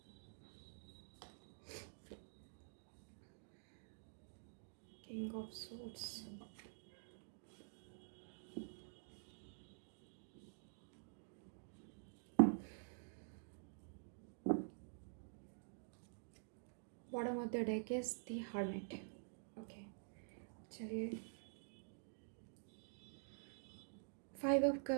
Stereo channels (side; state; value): left; silent; digital silence